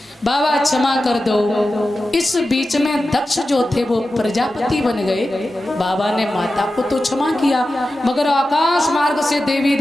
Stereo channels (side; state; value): both; normal; correlation 0.93